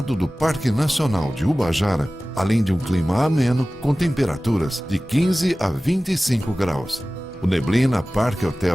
do Parque Nacional de Ubajara, além de um clima ameno com temperaturas de 15 a 25 graus. O Neblina Parque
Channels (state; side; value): normal; both; correlation 0.97